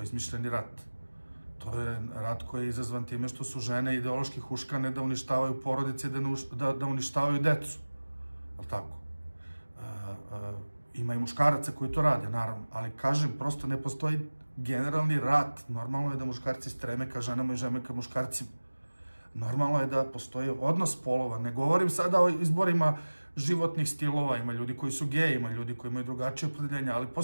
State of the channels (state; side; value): inverted; both; correlation -1.00